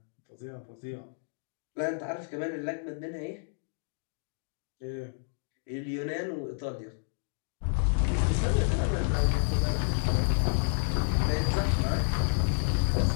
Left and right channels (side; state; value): right; silent; digital silence